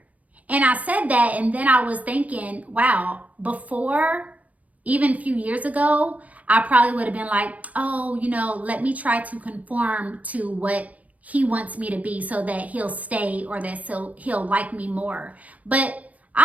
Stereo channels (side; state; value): left; late; 0.072 ms